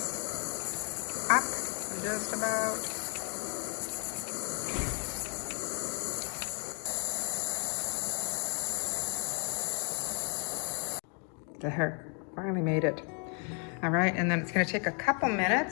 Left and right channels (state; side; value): quieter; right; 39.1 dB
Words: up just about. There, finally made it. All right, and then it's going to take a couple